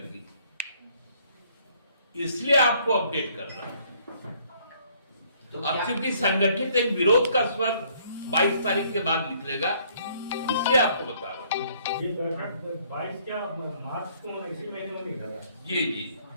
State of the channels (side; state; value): both; inverted; correlation -0.63